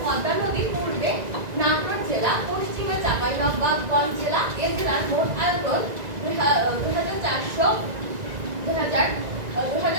পদ্মা নদীর পূর্বে নাটোর জেলা, পশ্চিমে চাঁপাইনবাবগঞ্জ জেলা। এ জেলার মোট আয়তন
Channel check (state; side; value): late; left; 1.9 ms